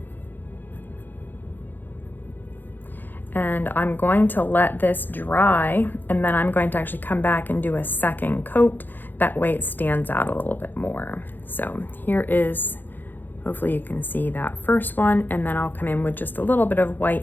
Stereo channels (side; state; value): right; late; 0.089 ms